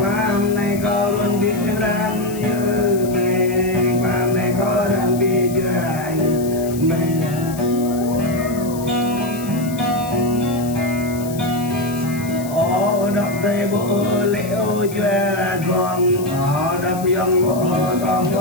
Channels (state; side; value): noise; left; hiss, 15 dB below the sound